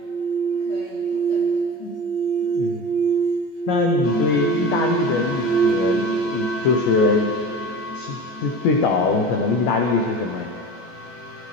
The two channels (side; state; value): right; late; 14 ms